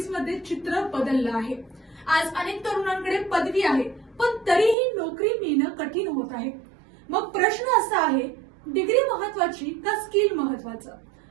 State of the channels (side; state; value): left; drops out; at 4.8 s